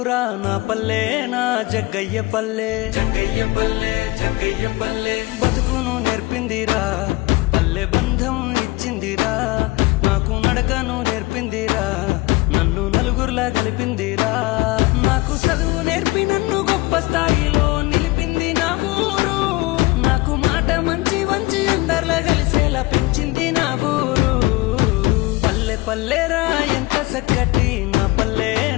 నా పల్లె నా జగ్గయ్య పల్లె జగ్గయ్య పల్లె జగ్గయ్య పల్లె బతుకును నేర్పిందిరా పల్లె బంధం ఇచ్చిందిరా నాకు నడకను నేర్పిందిరా నన్ను నలుగురులా కలిపిందిరా నాకు చదువు నేర్పి నన్ను గొప్ప స్థాయిలో నిలిపింది నా ఊరు నాకు మాట మంచి వంచి అందరిలా కలిసేలా పెంచింది నా ఊరు పల్లె పల్లెరా ఎంత చక్కటి నా పల్లె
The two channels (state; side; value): quieter; right; 21.2 dB